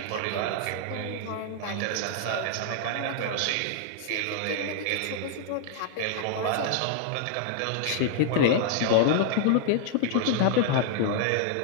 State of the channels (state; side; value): different; both; correlation -0.01